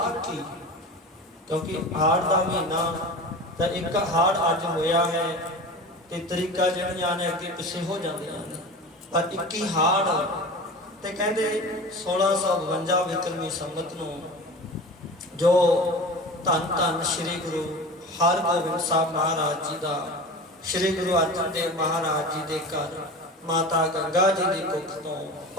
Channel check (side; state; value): both; normal; correlation 0.34